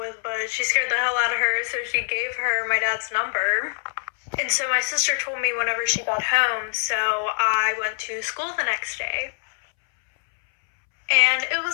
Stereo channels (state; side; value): silent; right; 63 dB below the other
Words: but she scared the hell out of her, so she gave her my dad's number. And so my sister told me whenever she got home, so I went to school the next day. And it